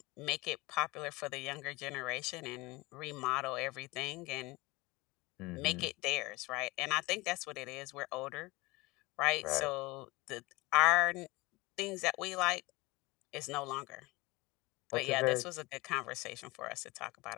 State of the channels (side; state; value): right; quieter; 22.8 dB